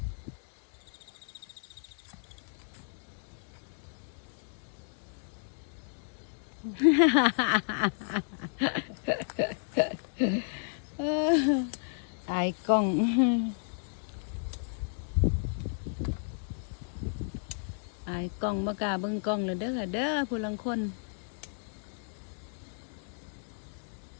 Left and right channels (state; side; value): silent; right; digital silence